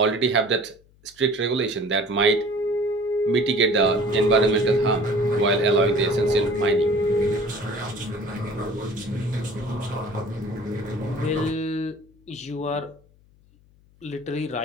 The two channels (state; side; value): noise; left; hum, 30 dB below the sound